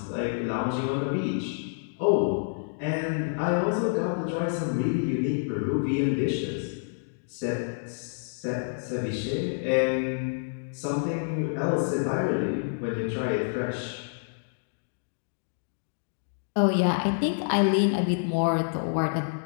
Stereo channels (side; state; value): right; silent; digital silence